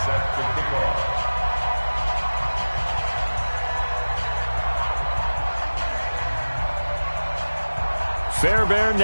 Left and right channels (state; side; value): inverted; both; correlation -1.00